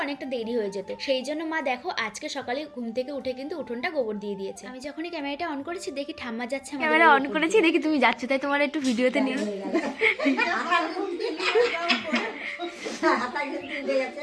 অনেকটা দেরি হয়ে যেত। সেই জন্য মা দেখো আজকে সকালে ঘুম থেকে উঠে কিন্তু উঠোনটা গোবর দিয়ে দিয়েছে। আমি যখনই ক্যামেরাটা অন করেছি দেখি ঠাম্মা যাচ্ছে, ক্যামেরা অন করেছি দেখি তুমি যাচ্ছ, তাই তোমার একটু ভিডিওতে নিয়ে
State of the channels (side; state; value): both; identical; correlation 1.00